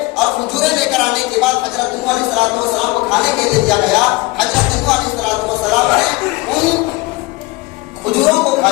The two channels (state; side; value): quieter; right; 22.3 dB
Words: اور کھجوریں لے کر آنے کے بعد حضرت نوح علیہ السلام کو کھانے کے لیے دیا گیا۔ حضرت نوح علیہ السلام نے ان کھجوروں کو